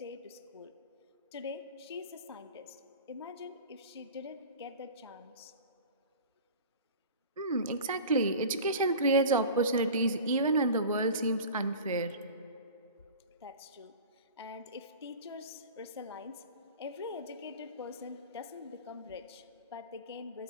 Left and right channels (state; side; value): inverted; both; correlation -0.37